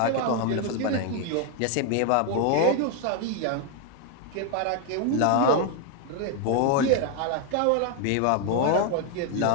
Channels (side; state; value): both; different; correlation 0.01